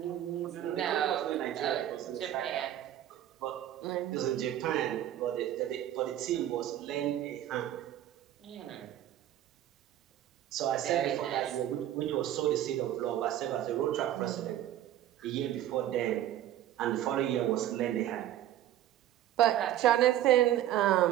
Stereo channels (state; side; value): quieter; left; 12.4 dB